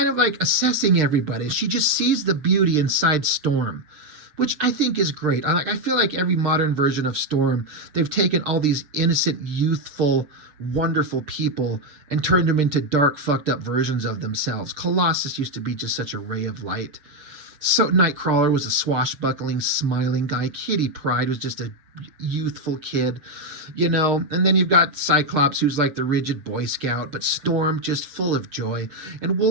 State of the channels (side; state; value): left; late; 6.5 ms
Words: of assessing everybody. She just sees the beauty inside Storm, which I think is great. I feel like every modern version of Storm, they've taken all these innocent, youthful, wonderful people and turned them into dark, fucked up versions of themselves. Colossus used to be just such a ray of light. So Nightcrawler was a swashbuckling, smiling guy. Kitty Pryde was just a youthful kid, you know. And then you've got Cyclops, who's like the rigid Boy Scout, but Storm just full of joy, and